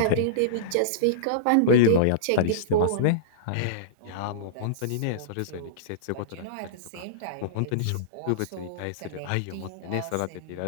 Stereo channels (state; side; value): different; both; correlation -0.03